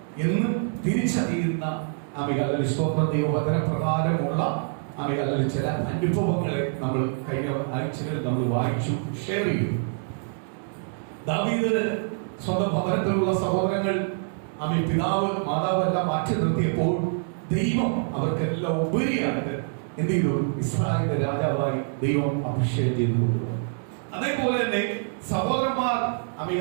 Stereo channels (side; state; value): left; silent; digital silence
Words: എന്ന് തിരിച്ചറിയുന്ന അമേയാലയ സ്തോത്രം ദൈവവചന പ്രകാരമുള്ള അമേയാലയ ചില അനുഭവങ്ങളെ നമ്മൾ കഴിഞ്ഞ ആഴ്ചകളിൽ നമ്മൾ വായിച്ചു, ഷെയർ ചെയ്തു. ദാവീദ് സ്വന്തം ഭവനത്തിലുള്ള സഹോദരങ്ങൾ പിതാവ് മാതാവ് എല്ലാം മാറ്റി നിർത്തിയപ്പോൾ ദൈവം അവർക്കെല്ലാം ഉപരിയായിട്ട് എന്ത് ചെയ്തു? ഇസ്രായേലിന്റെ രാജാവായി ദൈവം അഭിഷേകം ചെയ്തു കൊണ്ടുവന്നു. അതേപോലെ തന്നെ സഹോദരന്മാർ